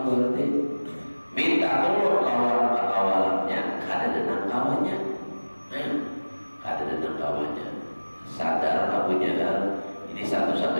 berarti. Minta tolong lawan kawalannya, kada denang kawannya. Kada denang kawannya. Sadar Abu Jahal ini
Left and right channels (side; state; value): both; inverted; correlation -1.00